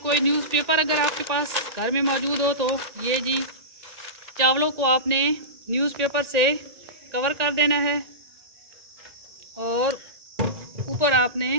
न्यूज़पेपर अगर आपके पास घर में मौजूद हो तो ये जी चावलों को आपने न्यूज़पेपर से कवर कर देना है और ऊपर आपने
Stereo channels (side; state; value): left; late; 1.9 ms